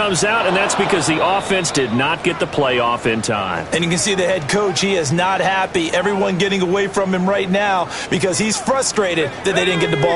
out, and that's because the offense did not get the play off in time. And you can see the head coach, he is not happy. Everyone getting away from him right now because he's frustrated that they didn't get the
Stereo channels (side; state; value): both; identical; correlation 1.00